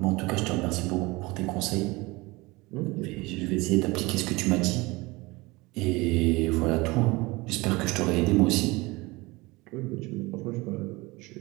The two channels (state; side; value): quieter; left; 22.9 dB